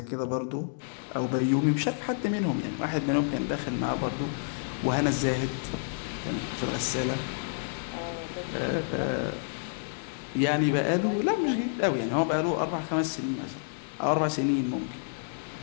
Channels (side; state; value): right; silent; digital silence